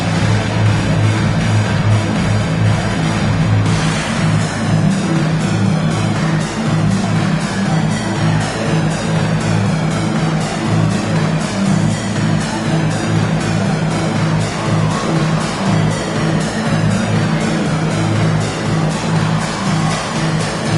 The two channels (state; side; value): identical; both; correlation 1.00